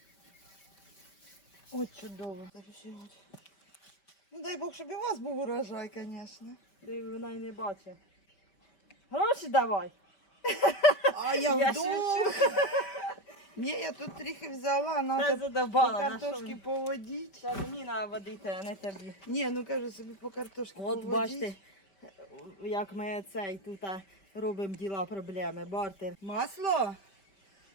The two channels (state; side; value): late; right; 5.1 ms